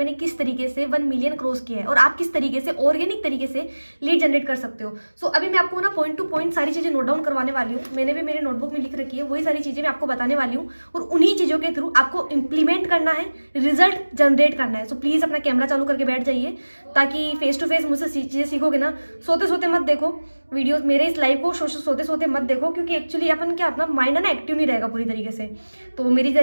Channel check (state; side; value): inverted; both; correlation -1.00